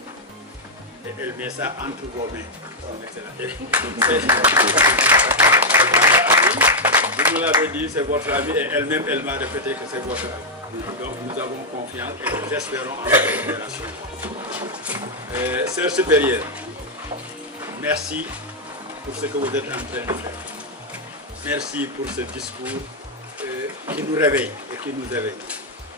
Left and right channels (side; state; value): both; normal; correlation -0.02